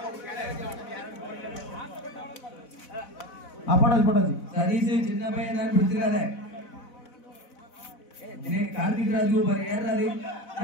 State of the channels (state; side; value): late; right; 4.1 ms